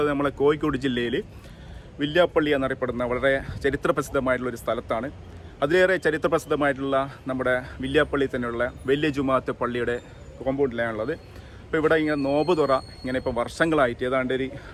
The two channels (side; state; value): both; identical; correlation 1.00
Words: നമ്മളെ കോഴിക്കോട് ജില്ലയിൽ വില്യാപ്പള്ളി എന്നറിയപ്പെടുന്ന വളരെ ചരിത്രപ്രസിദ്ധമായിട്ടുള്ളൊരു സ്ഥലത്താണ്. അതിലേറെ ചരിത്രപ്രസിദ്ധമായിട്ടുള്ള നമ്മുടെ വില്യാപ്പള്ളി തന്നെയുള്ള വലിയ ജുമാഅത്ത് പള്ളിയുടെ കോമ്പൗണ്ടിലാണുള്ളത്. അപ്പോൾ ഇവിടെ ഇങ്ങനെ നോമ്പ് തുറ ഇങ്ങനെ ഇപ്പോൾ വർഷങ്ങളായിട്ട് ഏതാണ്ട് ഒരു